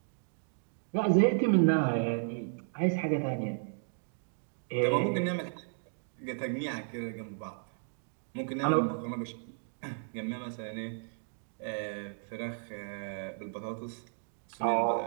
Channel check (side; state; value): left; silent; digital silence